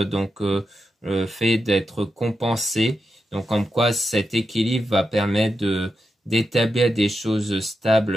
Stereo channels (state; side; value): normal; both; correlation 0.88